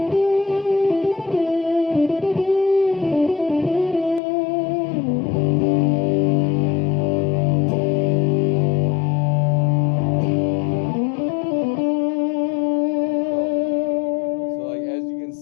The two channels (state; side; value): drops out; right; at 4.2 s